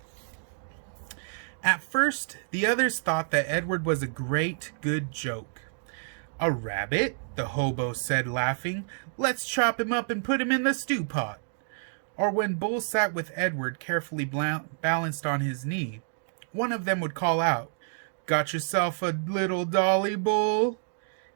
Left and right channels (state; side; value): silent; left; digital silence